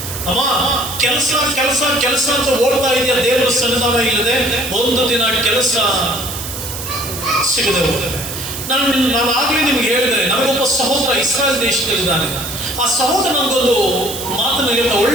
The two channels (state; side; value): noise; right; hiss, 8 dB below the sound